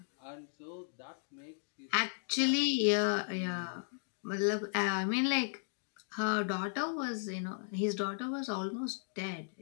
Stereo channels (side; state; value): right; silent; digital silence